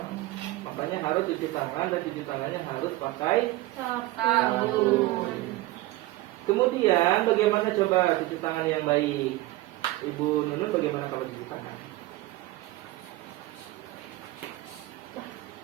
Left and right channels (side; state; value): left; quieter; 18.4 dB